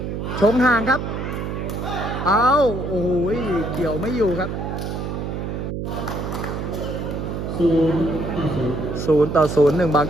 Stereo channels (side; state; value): right; noise; hum, 4 dB below the sound